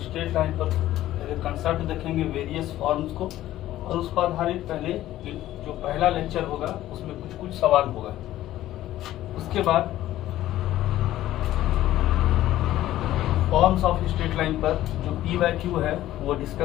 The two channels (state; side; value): quieter; right; 14.2 dB